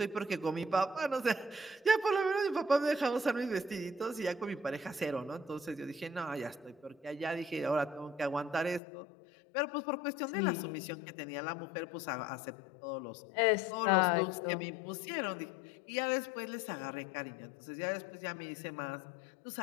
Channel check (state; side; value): drops out; right; at 8.8 s